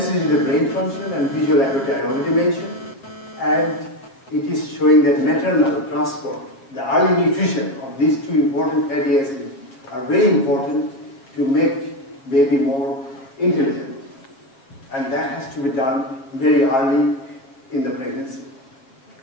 with brain function and visual acuity I already mentioned. And it is showing that maternal transport, the early nutrition of these two important fatty acids are very important to make baby more intelligent. And that has to be done very early in the pregnancy.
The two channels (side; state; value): right; late; 7.5 ms